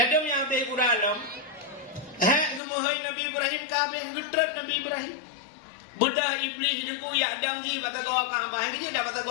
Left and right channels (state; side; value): drops out; right; at 2.6 s